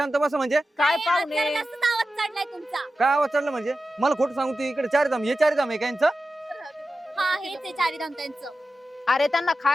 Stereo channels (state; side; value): normal; both; correlation 0.93